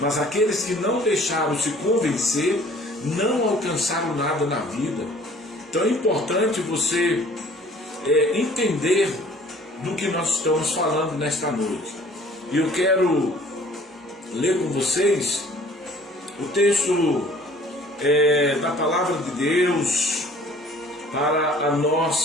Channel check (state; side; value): normal; both; correlation 0.53